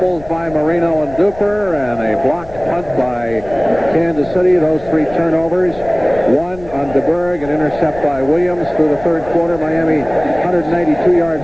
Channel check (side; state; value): left; noise; rumble, 18 dB below the sound